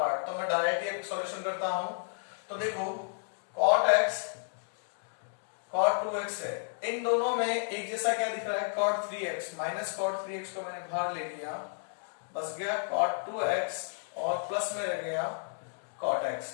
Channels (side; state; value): right; silent; digital silence